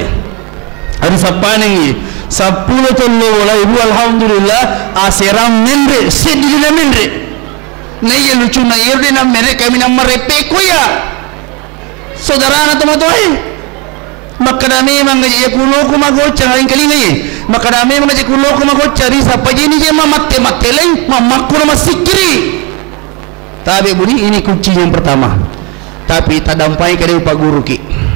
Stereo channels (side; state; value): left; quieter; 25.7 dB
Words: arisa panengi 10 ton no boleh bu, alhamdulillah aseram mendre sedina mendre na iya lucu na iya na mere kami na marepeko ya saudara na tomatoy makadami mangaji kulo ko magocha ngayon kalingayi makadami mangaji kulo ko magocha risa pajini je mamatte leng mamakuro masikiri. Tapi budi ini kunci yang pertama, tapi tadampai kade Pak Guru ki